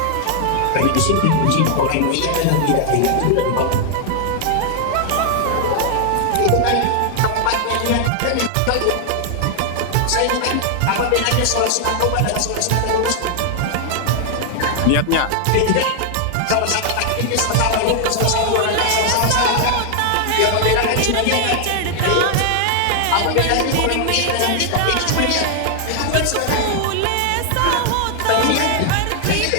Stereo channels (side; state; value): both; different; correlation 0.00